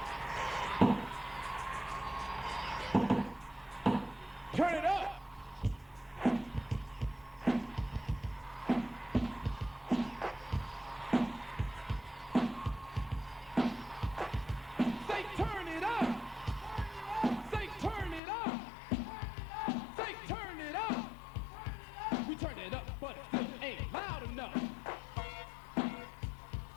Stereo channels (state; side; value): drops out; right; at 18.2 s